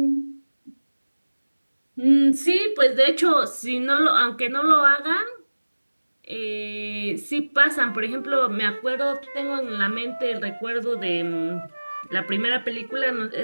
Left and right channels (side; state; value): both; inverted; correlation -1.00